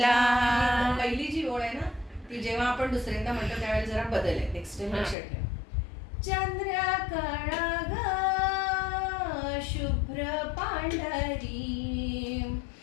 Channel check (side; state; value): right; drops out; at 5.2 s